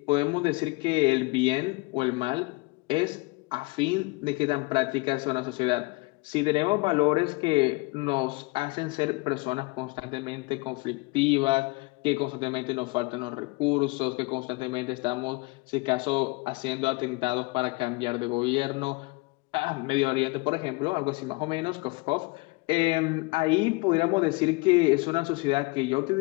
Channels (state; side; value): quieter; right; 25.9 dB